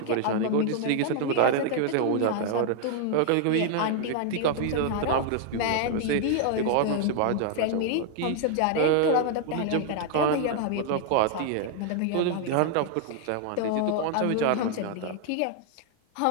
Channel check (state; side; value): different; both; correlation 0.00